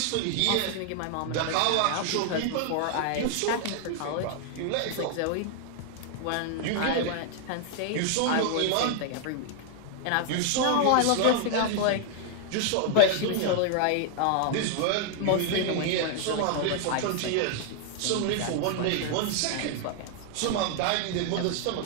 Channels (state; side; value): different; both; correlation 0.00